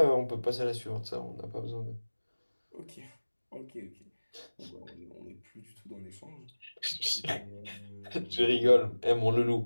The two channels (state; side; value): inverted; both; correlation -1.00